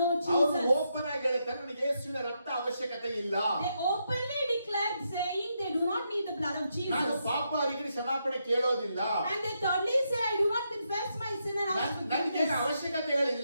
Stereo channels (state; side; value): inverted; both; correlation -0.81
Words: ಅವರು Jesus. ಓಪನ್ ಆಗಿ ಹೇಳ್ತಾರೆ, ನನಗೆ ಯೇಸುವಿನ ರಕ್ತ ಅವಶ್ಯಕತೆ ಇಲ್ಲ. They openly declared saying they do not need the blood of ನಾನು Jesus. ಪಾಪ ಅವರಿಗೆ ಕ್ಷಮಾಪಣೆ ಕೇಳೋದಿಲ್ಲ. And they thirdly say, I do not confess my sin and ask ನನಗೆ forgiveness.